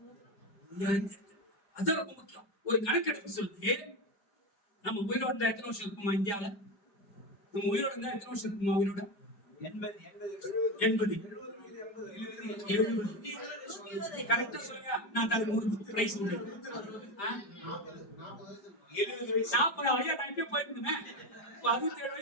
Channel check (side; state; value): right; late; 5.0 ms